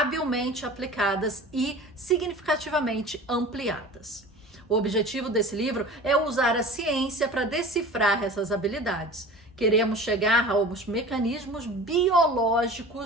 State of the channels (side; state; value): both; normal; correlation 0.39